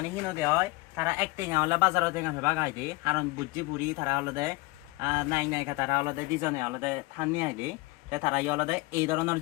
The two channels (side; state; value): right; quieter; 22.5 dB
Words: হিনো দে হয় তারা এক টেঙা হলে বাজারও টেঙা হইবা গাই দে কারণ বুঝছি বুড়ি তারা আলাদা নাই তারা আলাদা দুজনে আলাদা থানি আইলে তারা আলাদা এই ধরনের